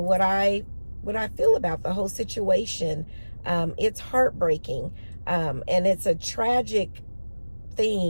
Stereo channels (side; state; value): both; inverted; correlation -1.00